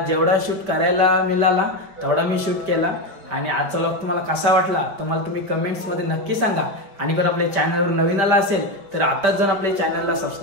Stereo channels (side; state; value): left; late; 5.1 ms